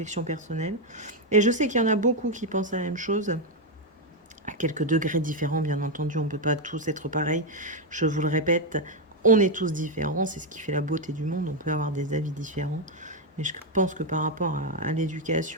personnelles. Et je sais qu'il y en a beaucoup qui pensent la même chose. À quelques degrés différents, bien entendu, on ne peut pas tous être pareils. Je vous le répète, on est tous différents. C'est ce qui fait la beauté du monde. On peut avoir des avis différents. Mais je pense que par rapport à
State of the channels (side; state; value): both; normal; correlation 0.03